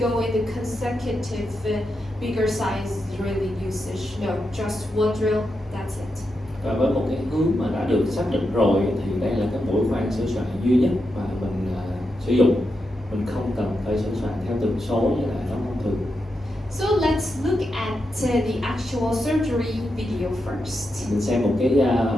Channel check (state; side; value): normal; both; correlation 0.86